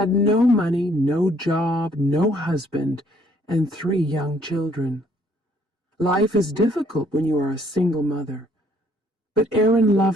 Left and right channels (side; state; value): both; normal; correlation 0.64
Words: no money, no job, no husband, and 3 young children. Life is difficult when you are a single mother. But Erin